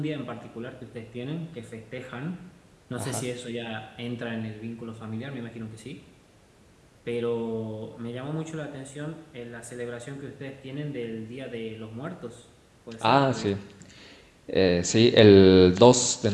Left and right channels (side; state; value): both; identical; correlation 1.00